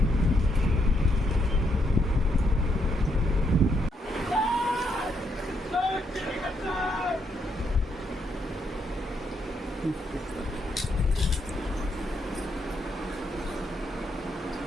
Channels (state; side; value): normal; both; correlation 0.76